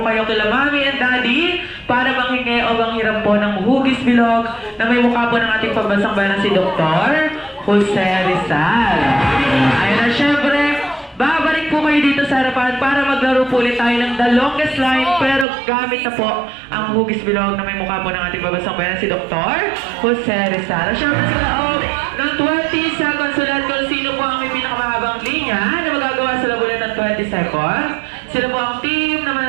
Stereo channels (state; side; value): drops out; left; at 15.5 s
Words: kayo kila Mami and Daddy para manghingi o manghiram po ng hugis bilog na may mukha po ng ating pambansang bayan si Dr. Jose Rizal. Ayun na, syempre, babalik po kayo dito sa harapan para maglaro po ulit tayo ng the longest line pero gamit na po ang hugis bilog na may mukha po ng ating pambansang bayan si Dr. Jose Rizal. Syempre sa loob ng 20 seconds ulit kung sino po ang may pinakamahabang linya na magagawa sa loob ulit ng 20 seconds. Sila po ang team na